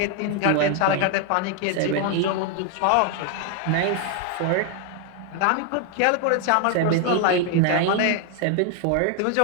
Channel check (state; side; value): different; both; correlation 0.00